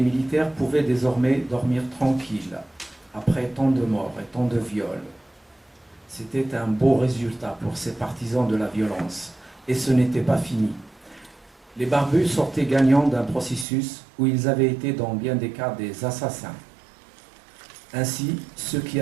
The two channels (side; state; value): left; drops out; at 13.7 s